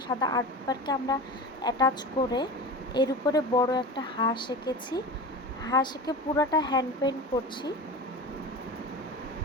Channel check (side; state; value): both; normal; correlation 0.29